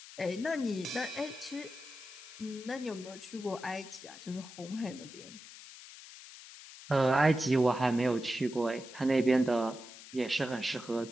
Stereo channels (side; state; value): left; noise; hiss, 16 dB below the sound